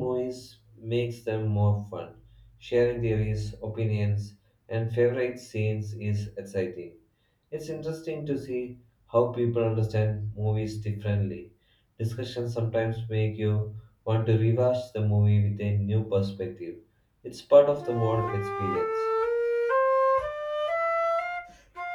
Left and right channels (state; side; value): identical; both; correlation 1.00